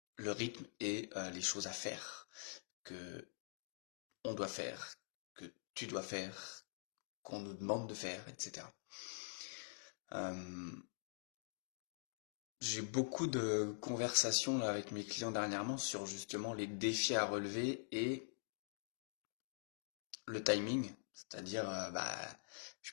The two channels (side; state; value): right; silent; digital silence